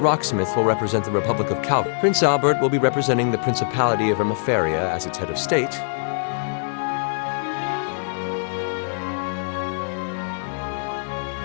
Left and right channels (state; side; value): silent; right; 57 dB below the other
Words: will represent the Republic of Cal. Prince Albert will be representing the Principality of Ermaferia as its head of state.